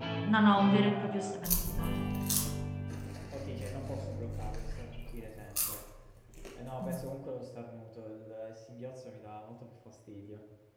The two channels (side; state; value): both; identical; correlation 1.00